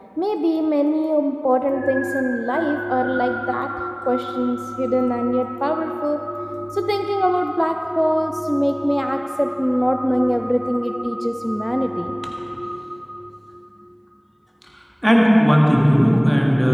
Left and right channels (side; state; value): both; identical; correlation 1.00